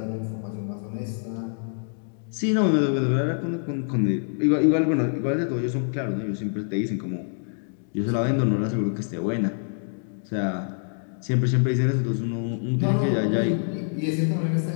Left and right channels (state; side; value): silent; right; digital silence